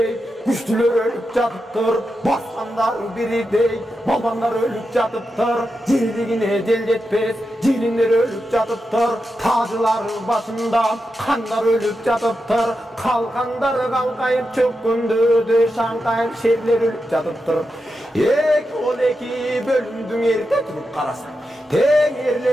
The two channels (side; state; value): both; normal; correlation 0.88